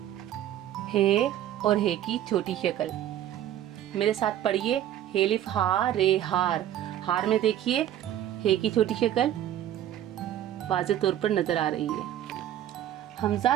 हे और हे की छोटी शक्ल। मेरे साथ पढ़िए। हेलिफ हा रे हार। हार में देखिए हे की छोटी शक्ल वाज़े तौर पर नजर आ रही है। हमजा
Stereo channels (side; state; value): left; quieter; 11.7 dB